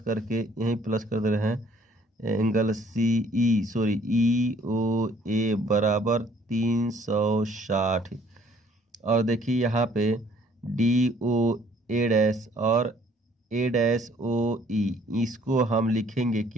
करके यहीं प्लस कर दे रहे हैं एंगल EOA बराबर 360। और देखिए यहाँ पे DOA' और A'OE, इसको हम लिखेंगे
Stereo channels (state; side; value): normal; both; correlation 0.60